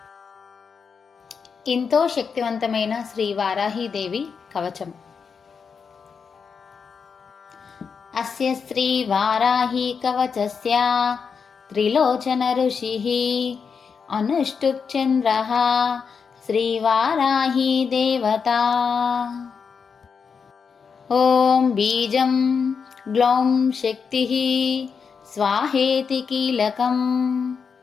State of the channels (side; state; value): right; quieter; 6.0 dB